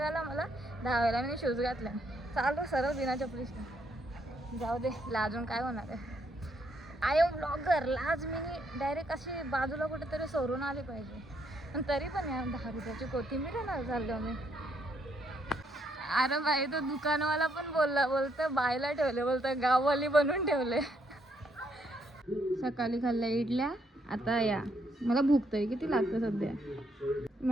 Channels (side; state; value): both; normal; correlation 0.73